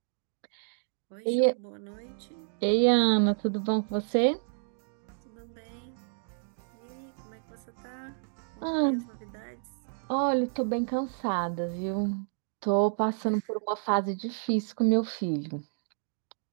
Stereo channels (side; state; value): left; silent; digital silence